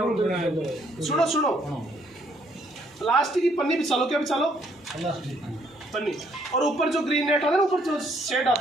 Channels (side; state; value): both; normal; correlation 0.68